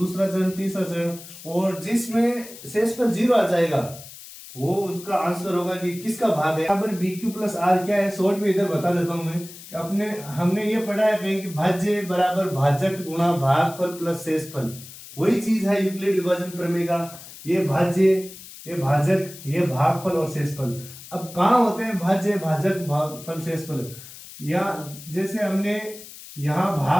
चरण, तीसरा चरण, और जिसमें शेषफल 0 आ जाएगा वो उसका आंसर होगा कि किसका भाग है। यहाँ पर BQ प्लस आर क्या है, शॉर्ट में इधर बता देता हूं मैं कि हमने ये पढ़ा है कहीं कि भाज्य बराबर भाजक गुणा भागफल प्लस शेषफल। वही चीज है यूक्लिड विभाजन प्रमेय का। ये भाज्य, ये भाजक, ये भागफल और शेषफल। अब कहाँ होते हैं भाज्य, भाजक, भागफल, शेषफल? या जैसे हमने यहां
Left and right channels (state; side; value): noise; left; hiss, 16 dB below the sound